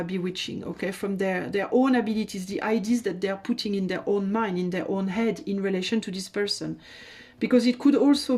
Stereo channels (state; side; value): identical; both; correlation 1.00